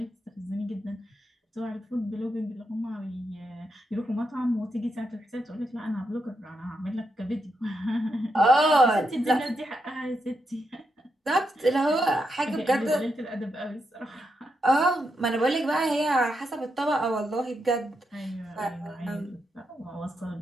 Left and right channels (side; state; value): both; normal; correlation 0.82